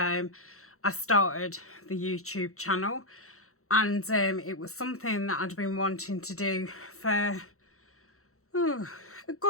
started the YouTube channel. And it was something that I'd been wanting to do for a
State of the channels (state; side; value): late; right; 0.63 ms